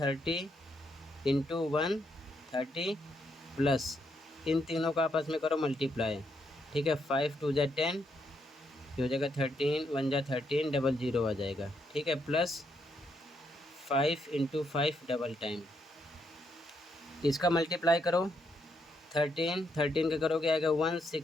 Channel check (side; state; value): both; normal; correlation 0.77